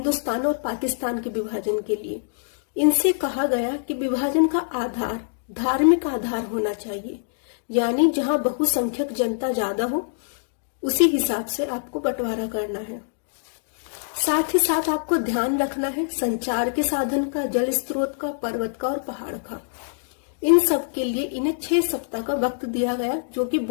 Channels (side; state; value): right; silent; digital silence